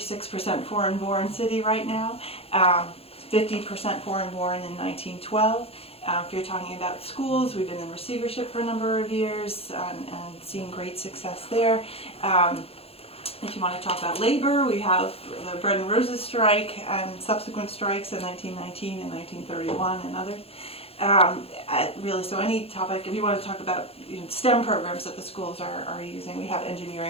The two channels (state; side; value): late; right; 0.28 ms